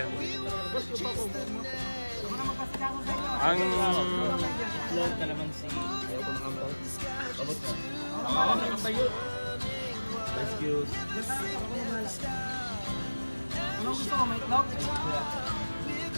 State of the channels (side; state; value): both; inverted; correlation -1.00